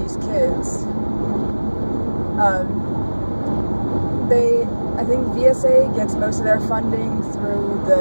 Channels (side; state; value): both; inverted; correlation -1.00